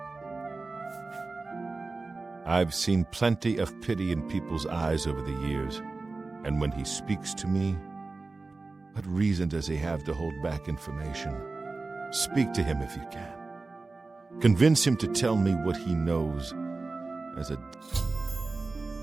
I've seen plenty of pity in people's eyes over the years, and when he speaks to me, what reason does he have to hold back information? Speak to him if you can. Convince him to tell me what he knows as a...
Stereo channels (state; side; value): quieter; left; 3.6 dB